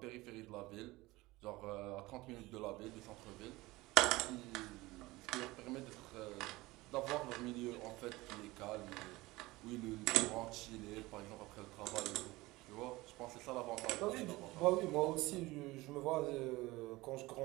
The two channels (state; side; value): quieter; left; 20.3 dB